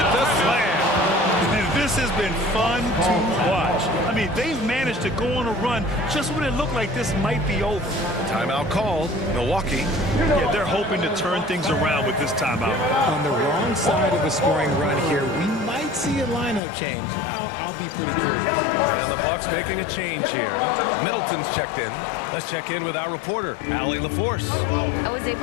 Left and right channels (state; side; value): drops out; right; at 16.6 s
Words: the slam. This has been fun to watch. I mean, they've managed to go on a run just when it looked like this might be over. Timeout called. Milwaukee. Yeah, they're hoping to turn things around with this timeout. On the wrong side of a scoring run here, we might might see a lineup change. I'll be pretty curious. And the Bucks making a change here. Middleton's checked in. Let's check in with our reporter, Allie LaForce. I was